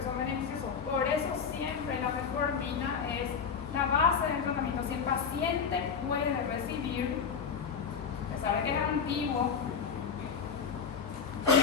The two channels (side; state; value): right; quieter; 6.3 dB